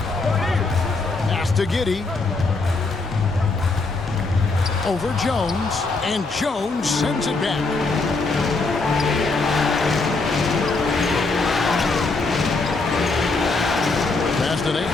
Pass to Giddey. Over Jones. And Jones sends it back. Pass to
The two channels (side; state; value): right; quieter; 3.7 dB